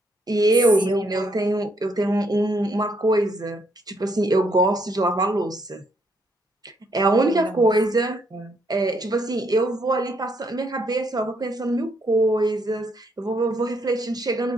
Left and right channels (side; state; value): both; normal; correlation 0.73